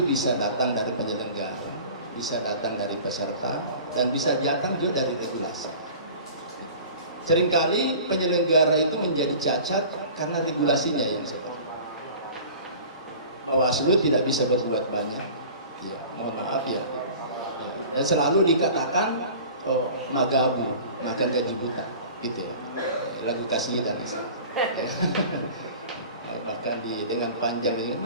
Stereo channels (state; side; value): inverted; both; correlation -0.42